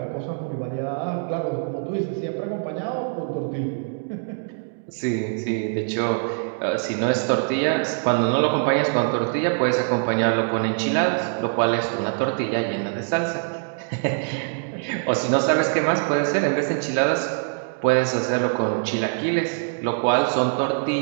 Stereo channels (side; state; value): left; silent; digital silence